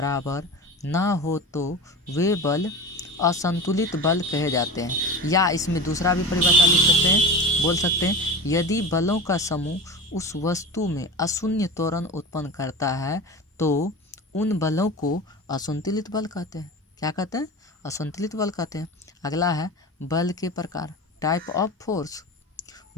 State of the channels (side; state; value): both; normal; correlation 0.31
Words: ना हो तो वे बल असंतुलित बल कहे जाते हैं। या इसमें दूसरा भी परिभाषा लिख सकते हैं, बोल सकते हैं, यदि बलों का समूह उस वस्तु में अशून्य त्वरण उत्पन्न करता है तो उन बलों को असंतुलित बल कहते हैं। क्या कहते हैं? असंतुलित बल कहते हैं। अगला है बल के प्रकार, टाइप ऑफ फोर्स।